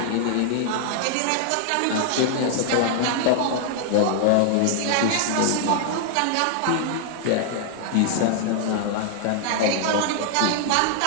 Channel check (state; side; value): different; both; correlation 0.00